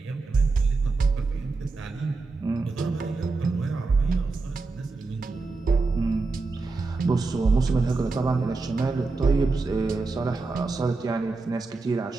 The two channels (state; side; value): quieter; left; 3.8 dB